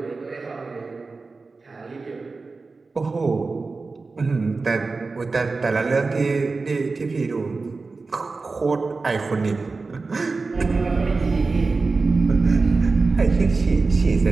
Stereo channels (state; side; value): quieter; left; 4.0 dB